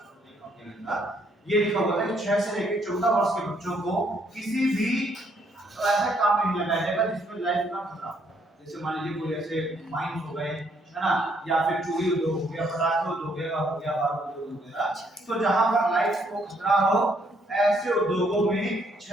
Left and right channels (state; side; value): normal; both; correlation 0.69